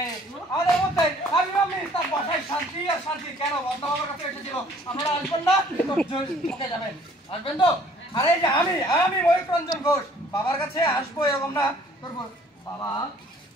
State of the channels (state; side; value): normal; both; correlation 0.57